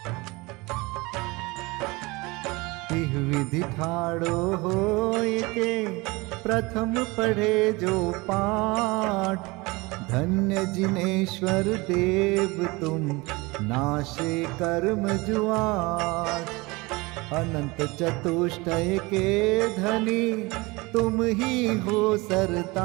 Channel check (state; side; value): quieter; left; 24.0 dB